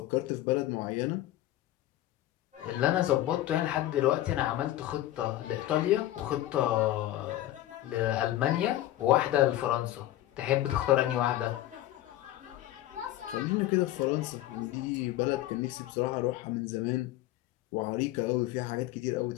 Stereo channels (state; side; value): quieter; right; 14.5 dB